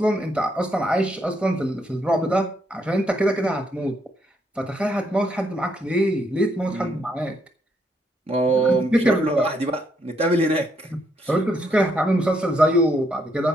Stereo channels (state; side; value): normal; both; correlation 0.74